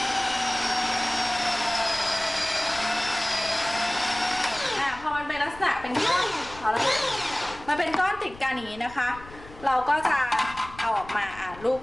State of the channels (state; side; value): noise; left; rumble, 18 dB below the sound